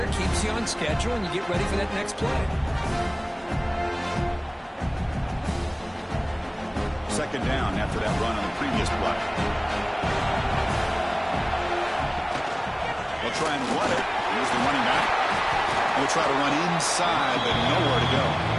Keeps you on schedule, and you get ready for that next play. 2nd down after that run on the previous play. They'll try and run it. Here's the running back. They'll try to run inside, but nowhere to go.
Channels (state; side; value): identical; both; correlation 1.00